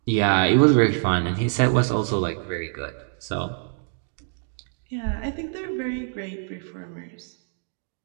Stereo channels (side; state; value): left; silent; 62 dB below the other